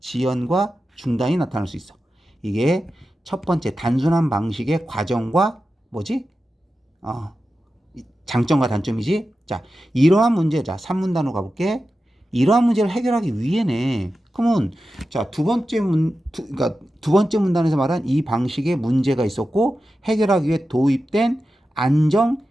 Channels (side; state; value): both; normal; correlation 0.92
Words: 중단이 나타날 수 있어. 이게 첫 번째 단순한 방식의 과정과 장점과 단점이지. 이러한 문제 3문단으로 가볼게. 이러한 문제를 해결하기 위해네. 그러면 두 번째 문단에서 말한 이 방식에 문제가 있었고 해결하기 위해 도입된 안정